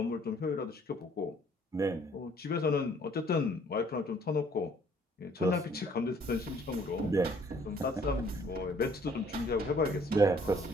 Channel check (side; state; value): both; normal; correlation 0.60